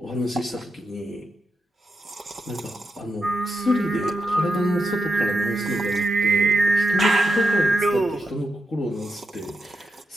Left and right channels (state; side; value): normal; both; correlation 0.86